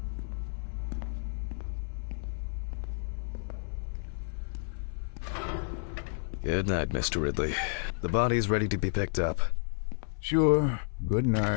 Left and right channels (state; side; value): silent; right; 57 dB below the other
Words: Good night, Mr. Ridley. The body's ready to be picked up. Sure. Good